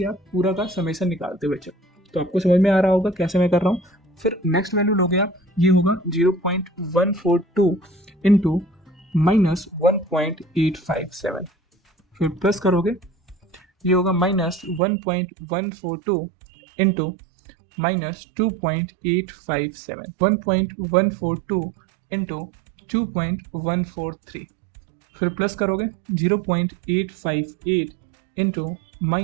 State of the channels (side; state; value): left; drops out; at 14.8 s